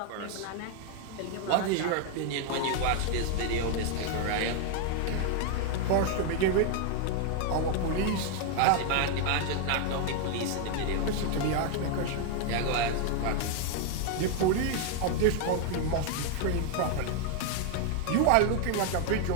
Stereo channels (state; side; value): different; both; correlation 0.00